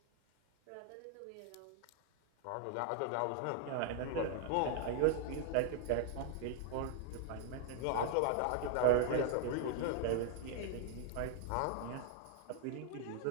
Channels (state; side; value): different; both; correlation 0.00